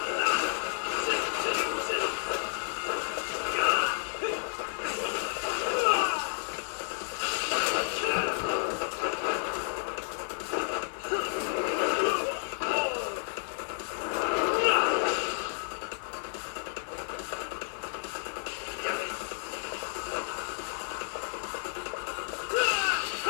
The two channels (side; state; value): right; silent; digital silence